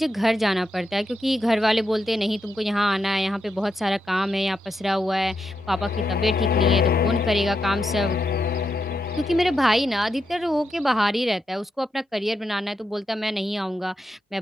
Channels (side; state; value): both; normal; correlation 0.84